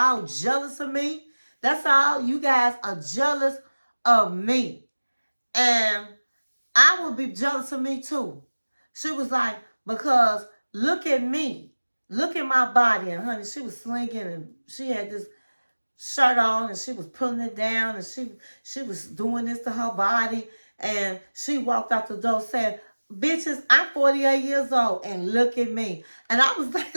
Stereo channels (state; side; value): inverted; both; correlation -1.00